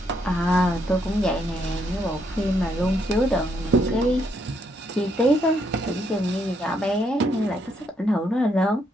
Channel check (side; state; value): both; normal; correlation 0.74